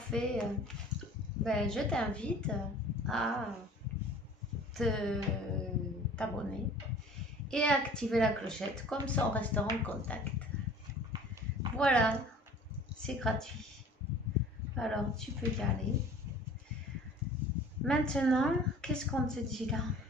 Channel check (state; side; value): normal; both; correlation 0.47